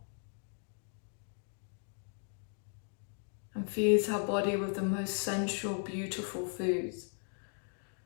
And feeds her body with the most sensual, beautiful foods.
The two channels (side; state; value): right; silent; 53 dB below the other